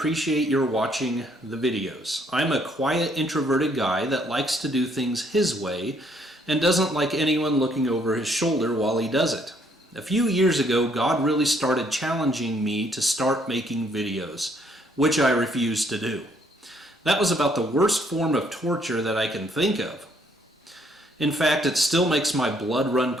your watching the videos. I'm a quiet, introverted guy that likes to do things his way and doesn't like anyone looking over his shoulder while he does it. A few years ago, God really started challenging me to start making videos, which I refused to do. That was about the worst form of torture that I can think of. In fact, it still makes my blood run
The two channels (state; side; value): normal; both; correlation 0.67